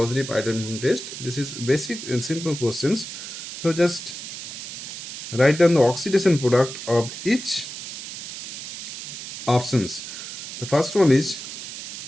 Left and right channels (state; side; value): noise; right; hiss, 9 dB below the sound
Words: iodoform test? This is basic and simple questions. So just write down the oxidation product of each options. The first one is